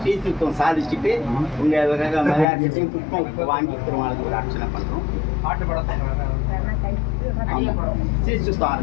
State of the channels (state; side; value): drops out; right; at 2.5 s